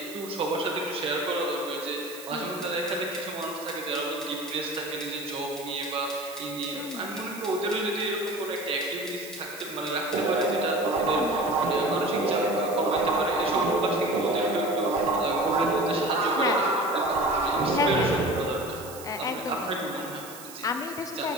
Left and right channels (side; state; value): right; noise; hiss, 15 dB below the sound